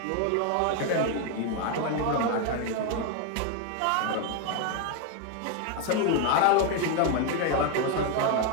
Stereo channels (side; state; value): both; different; correlation 0.01